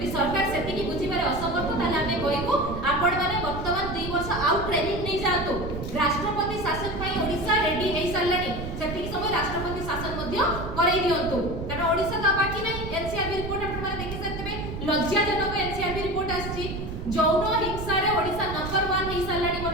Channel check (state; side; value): noise; right; rumble, 7 dB below the sound